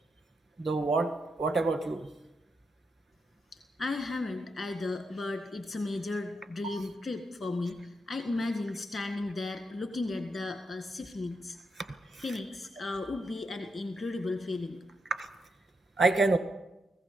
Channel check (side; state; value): both; normal; correlation 0.82